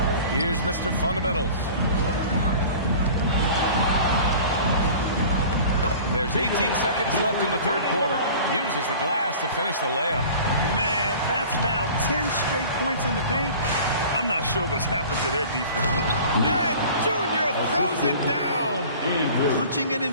Here's Mr. Fundamentals. There's 18 seconds left in the third quarter. Uses the glass to finish the layup. Man, that's now 10 straight points in the paint. I'm not sure what's happened to their defense. And Junior throws it down. Punching it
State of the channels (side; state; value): both; inverted; correlation -0.42